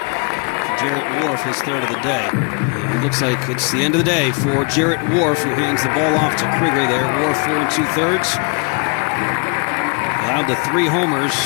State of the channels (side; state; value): right; quieter; 34.6 dB